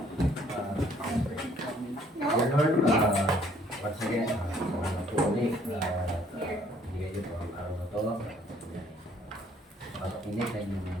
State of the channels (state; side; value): normal; both; correlation 0.61